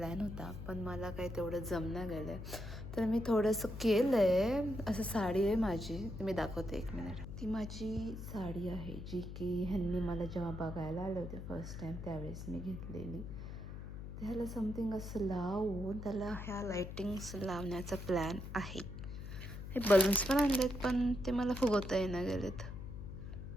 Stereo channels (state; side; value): noise; left; hum, 9 dB below the sound